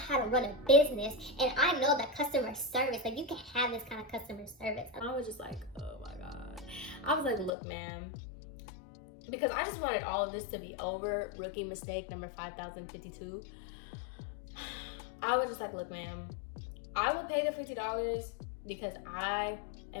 to run a business, and I know that customer service, like, you can have this kind of customer service. And I was just like, oh my God. I was like, look, ma'am, because I just wanted all of this to be over. Rookie mistake number 5052. I was just like, look, ma'am, I will pay the $50 because I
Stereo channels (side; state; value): right; drops out; at 7.5 s